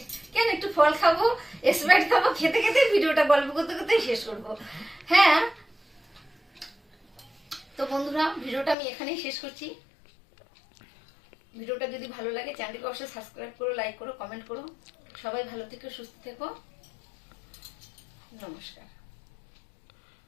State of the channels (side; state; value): right; drops out; at 8.8 s